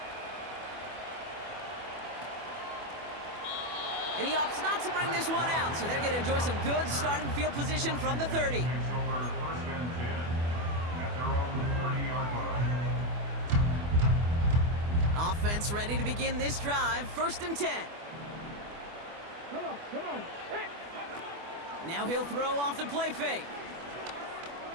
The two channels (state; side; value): late; left; 24 ms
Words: And he opts not to bring this one out, so they're going to enjoy some good starting field position from the 30. Takes over 1st and 10 at their own 30-yard line. Offense ready to begin this drive. 1st and 10. Come on. Now he'll throw off the play fake.